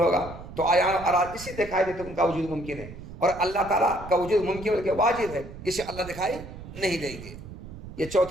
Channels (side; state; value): right; noise; rumble, 13 dB below the sound